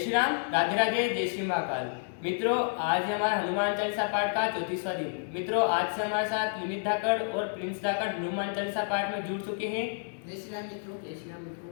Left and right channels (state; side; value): silent; right; digital silence